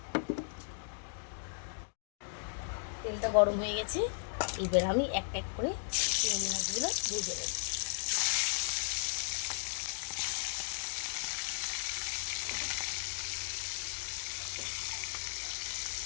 তেলটা গরম হয়ে গেছে, এবার আমি এক এক করে চিংড়ি মাছগুলো ভেজে দেব।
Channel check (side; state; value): right; silent; digital silence